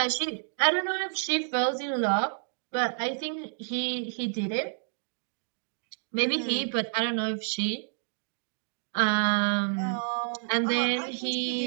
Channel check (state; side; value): silent; left; digital silence